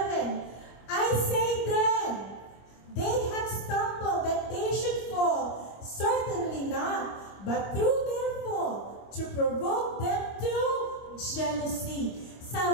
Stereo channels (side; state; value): right; late; 25 ms